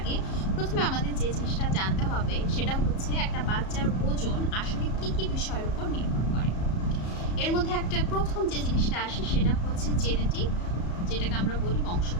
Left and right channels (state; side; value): late; right; 34 ms